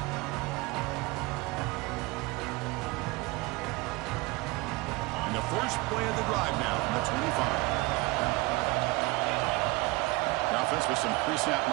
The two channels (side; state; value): left; quieter; 22.9 dB